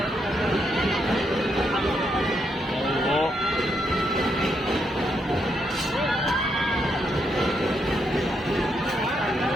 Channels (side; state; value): both; normal; correlation 0.78